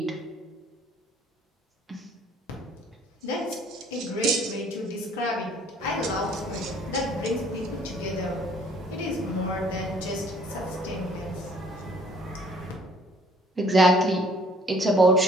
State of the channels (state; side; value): normal; both; correlation 0.57